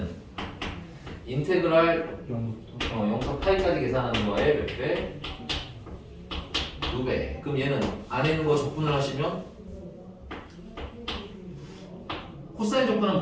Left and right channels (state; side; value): identical; both; correlation 1.00